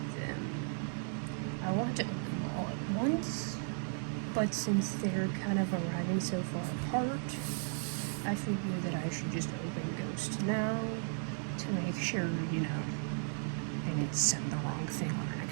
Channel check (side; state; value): left; silent; 54 dB below the other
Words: them. I want to open them all at once, but since they're kind of arriving so far apart, I figure that I should just open Ghost now to make sure, you know, I didn't send the wrong thing on